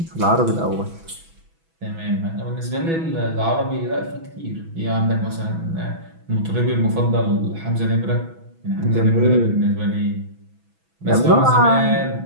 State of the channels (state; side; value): late; left; 6.1 ms